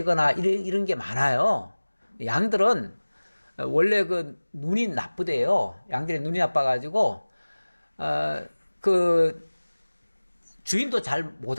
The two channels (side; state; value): both; inverted; correlation -1.00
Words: 이런 게 많아요. 양들은 원래 그 눈이 나쁘대요. 양들의 눈이 나빠가지고 그 주인도 잘 못